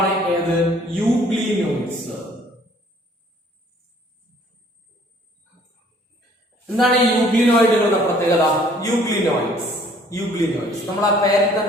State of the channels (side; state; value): both; normal; correlation 0.58